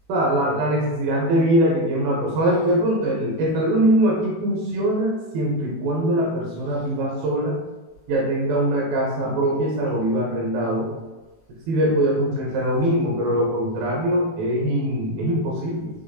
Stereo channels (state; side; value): late; left; 18 ms